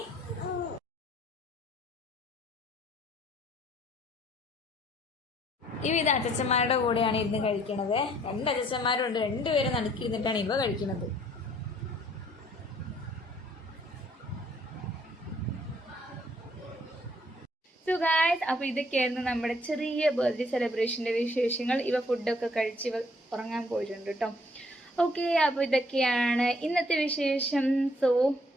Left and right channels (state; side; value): normal; both; correlation 0.63